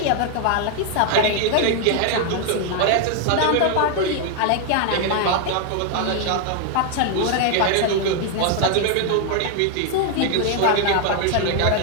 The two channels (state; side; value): different; both; correlation 0.00